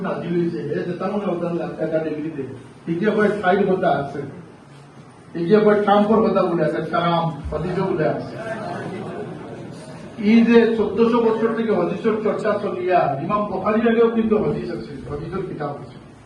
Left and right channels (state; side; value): identical; both; correlation 1.00